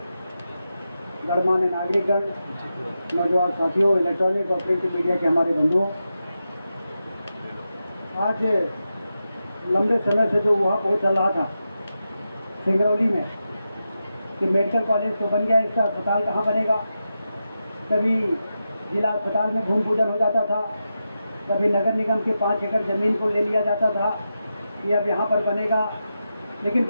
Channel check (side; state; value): both; inverted; correlation -0.89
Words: गणमान्य नागरिकगण, नौजवान साथियों, इलेक्ट्रॉनिक और प्रिंट मीडिया के हमारे बंधुओं, आज लंबे समय से जो वहाँ पहुँच चल रहा था सिंगरौली में कि मेडिकल कॉलेज तो बन गया, इसका अस्पताल कहाँ बनेगा, कभी जिला अस्पताल में भूमि पूजन हो जाता था, कभी नगर निगम के 5 एकड़ ज़मीन को ले लिया जाता था कि अब यहाँ पर बनेगा, लेकिन